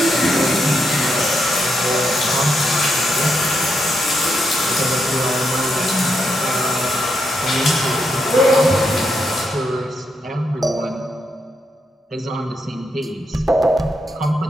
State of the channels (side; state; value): both; normal; correlation 0.81